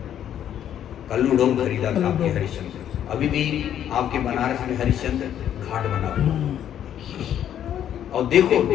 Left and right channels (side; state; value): right; quieter; 10.2 dB